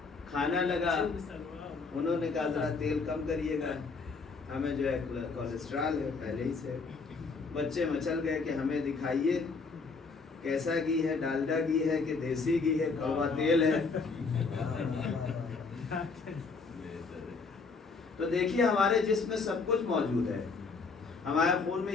کھانا لگا، انہوں نے کہا ذرا تیل کم کریے گا، ہمیں جو ہے کولیسٹرول ہے پہلے ہی سے۔ بچے مچل گئے کہ ہمیں دکھائیے کیسا گھی ہے، ڈالڈا گھی ہے کہ دیسی گھی ہے، کڑوا تیل ہے۔ تو دیکھیے ہمارے جسم میں سب کچھ موجود ہے، ہمارے خون میں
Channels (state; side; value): quieter; right; 4.5 dB